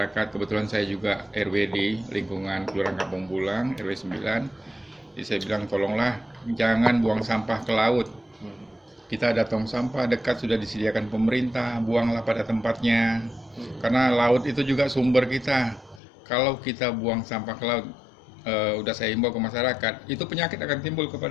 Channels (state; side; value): drops out; right; at 16.0 s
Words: kebetulan saya juga RW di lingkungan Kelurahan Kampung Bulang, RW 9. Jadi saya bilang tolonglah jangan buang sampah ke laut. Kita ada tong sampah dekat sudah disediakan pemerintah, buanglah pada tempatnya. Karena laut itu juga sumber kita. Kalau kita buang sampah ke laut, udah saya himbau ke masyarakat, itu penyakit akan timbul